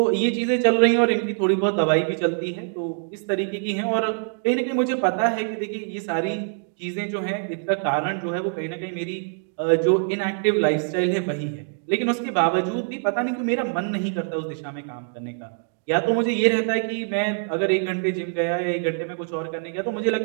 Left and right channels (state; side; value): silent; left; 56 dB below the other